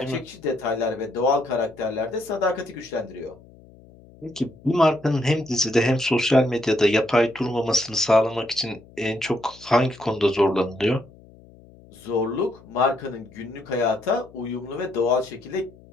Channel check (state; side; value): noise; left; hum, 24 dB below the sound